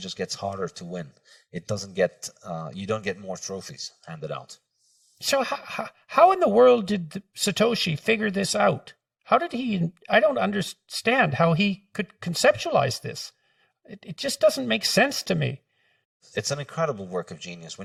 gets harder to win. It doesn't get, you don't get more trophies handed out. So how in the world did Satoshi figure this out? How did he? I don't understand how he could conceptualize this. It just doesn't make sense to me. It's an incredible work of genius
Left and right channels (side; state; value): both; identical; correlation 1.00